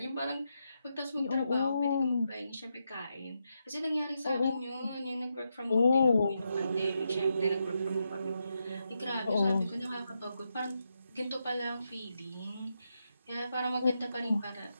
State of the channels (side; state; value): both; inverted; correlation -0.84